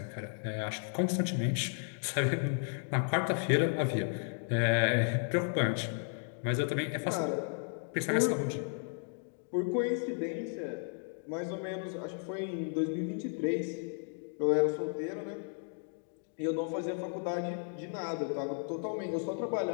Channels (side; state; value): right; silent; 55 dB below the other